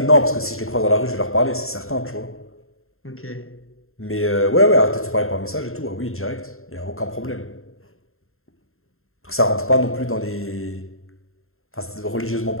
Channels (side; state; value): right; late; 0.62 ms